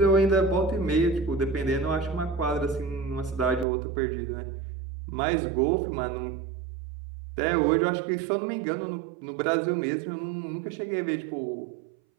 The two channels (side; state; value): left; drops out; at 3.7 s